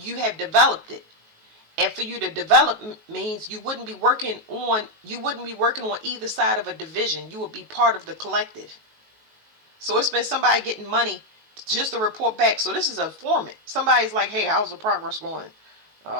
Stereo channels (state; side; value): late; left; 19 ms